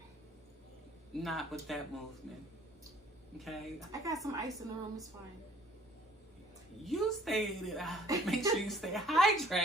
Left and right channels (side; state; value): both; normal; correlation 0.56